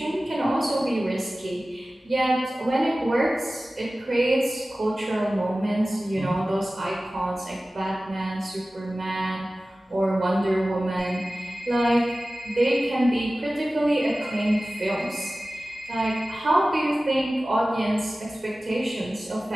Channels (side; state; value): both; normal; correlation 0.96